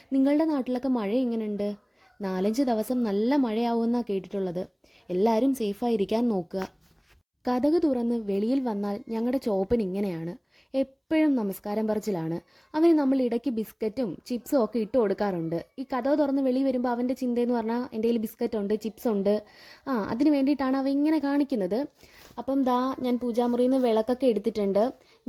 നിങ്ങളുടെ നാട്ടിലൊക്കെ മഴ എങ്ങനെയുണ്ട്? 4-5 ദിവസം നല്ല മഴയാവുമെന്നാണ് കേട്ടിട്ടുള്ളത്. എല്ലാവരും സേഫായിരിക്കാൻ നോക്കുക. കതക് തുറന്ന് വെളിയിൽ വന്നാൽ ഞങ്ങളുടെ ചോപ്പൻ ഇങ്ങനെയാണ്. എപ്പോഴും നമസ്കാരം പറച്ചിലാണ്. അവന് നമ്മൾ ഇടയ്ക്ക് ബിസ്ക്കറ്റും ചിപ്സും ഒക്കെ ഇട്ട് കൊടുക്കാറുണ്ട്. ഈ കതക് തുറന്ന് വെളി വരുമ്പോൾ അവൻ്റെ ചിന്തയെന്ന് പറഞ്ഞാൽ എൻ്റെ കയ്യിൽ ബിസ്ക്കറ്റ് ഉണ്ട്, ചിപ്സ് ഉണ്ട്, അതിന് വേണ്ടിയിട്ടാണ് അവ ഇങ്ങനെ കാണിക്കുന്നത്. അപ്പം ദാ ഞാൻ പൂജാമുറിയിൽ നിന്ന് വിളക്കൊക്കെ എടുത്തിട്ടുണ്ട്.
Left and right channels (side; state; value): both; identical; correlation 1.00